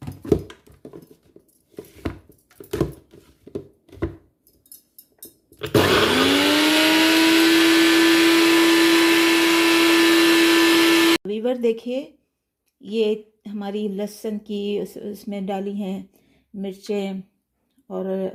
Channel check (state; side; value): identical; both; correlation 1.00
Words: वीवर देखिए, ये हमारी लहसुन की उसमें डाली हैं मिर्चें और